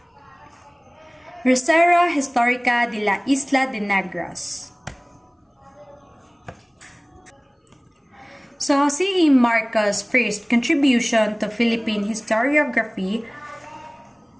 Reserva Histórica de la Isla de Negros. So, si Marco's first contribution to Philippine historiography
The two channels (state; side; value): identical; both; correlation 1.00